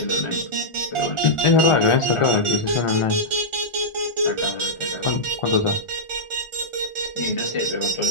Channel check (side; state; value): right; late; 1.4 ms